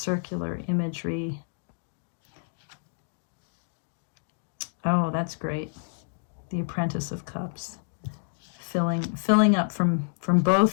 imagery. Oh, that's great. The Apprentice of Cups, filling up from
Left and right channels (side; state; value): right; silent; digital silence